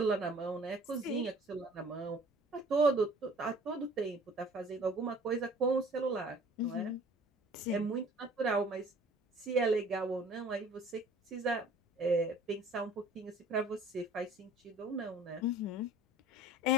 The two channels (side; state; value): both; normal; correlation 0.50